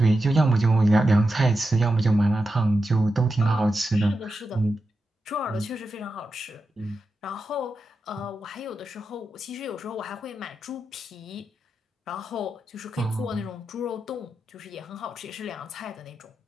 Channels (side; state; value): both; normal; correlation 0.89